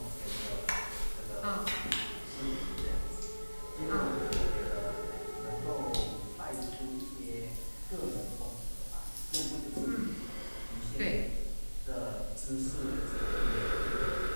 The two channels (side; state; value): both; inverted; correlation -1.00